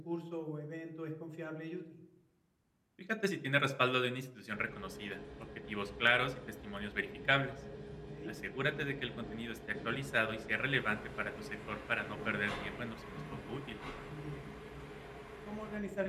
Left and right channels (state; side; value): identical; both; correlation 1.00